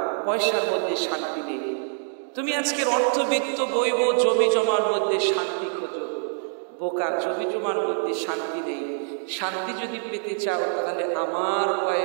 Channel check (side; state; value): left; silent; digital silence